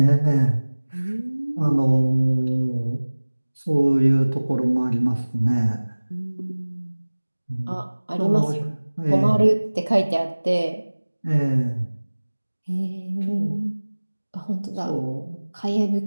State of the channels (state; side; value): inverted; both; correlation -1.00